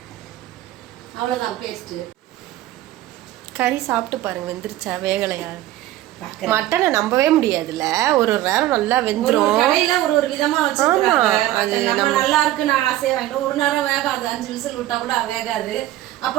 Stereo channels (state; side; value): quieter; left; 14.7 dB